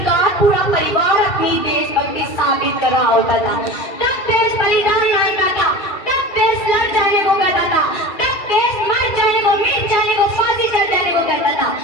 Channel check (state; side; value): late; right; 2.3 ms